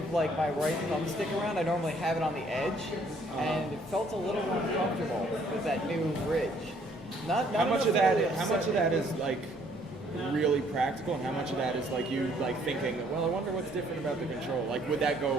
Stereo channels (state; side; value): normal; both; correlation 0.63